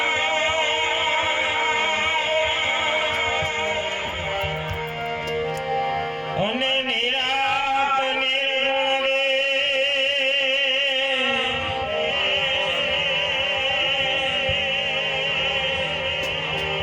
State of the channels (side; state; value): both; identical; correlation 1.00